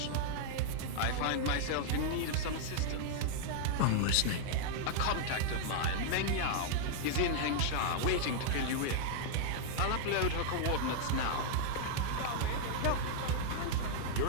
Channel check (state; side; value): different; both; correlation -0.01